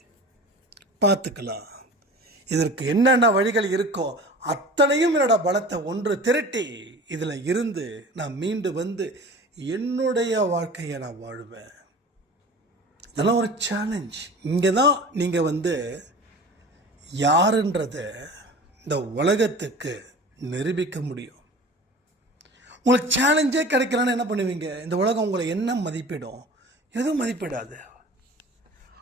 பார்த்துக்கலாம். இதற்கு என்னென்ன வழிகள் இருக்கோ அத்தனையும் என்னோட பலத்தை ஒன்று திரட்டி இதில் இருந்து நான் மீண்டு வந்து என்னுடைய வாழ்க்கையை நான் வாழ்வேன். இதெல்லாம் ஒரு சேலஞ்ச். இங்கே தான் நீங்கள் வந்து யாருன்றத இந்த உலகத்துக்கு நிரூபிக்க முடியும். உங்களுக்கு சேலஞ்சே கிடைக்கலன்னு என்ன பண்ணுவீங்க? இந்த உலகம் உங்களை என்ன மதிப்பிடும்? எதுவும் மதிப்பிடாது.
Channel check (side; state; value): both; normal; correlation 0.39